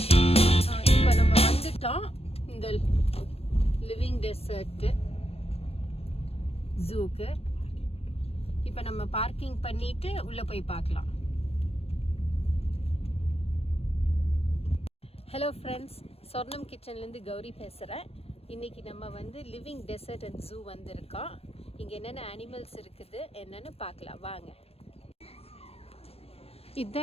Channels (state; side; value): late; right; 0.28 ms